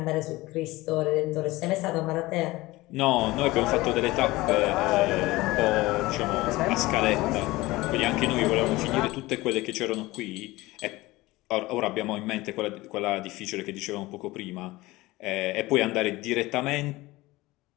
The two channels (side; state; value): right; quieter; 19.8 dB